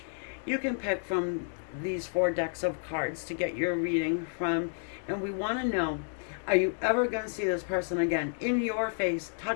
you can pick from these four decks of cards to get your reading from, and we want to know, are you ever going to see this person again in your face,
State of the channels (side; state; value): right; silent; digital silence